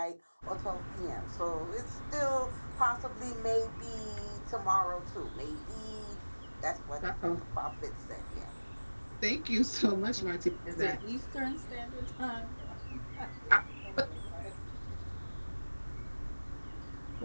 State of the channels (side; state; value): both; inverted; correlation -1.00